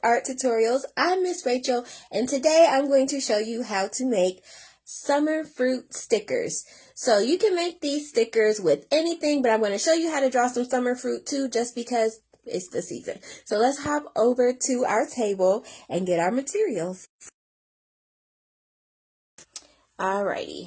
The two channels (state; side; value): identical; both; correlation 1.00